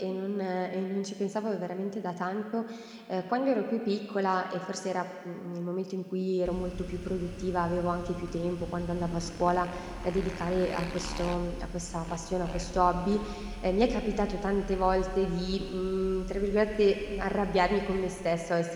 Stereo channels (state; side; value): identical; both; correlation 1.00